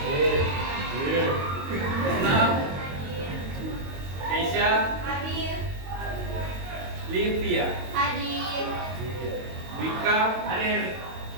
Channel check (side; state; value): left; late; 22 ms